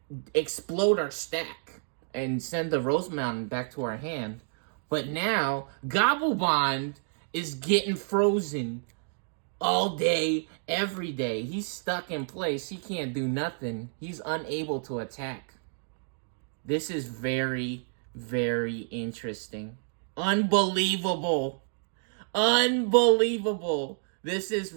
explode our stack and send the Rosemon back to our hand. But now, Gobblebond is getting frozen all day, every day. He's stuck in place. He can't do nothing. He's unable to attack. This is very, very interesting. Unbelievable. Unbelievable. This is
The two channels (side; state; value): left; silent; digital silence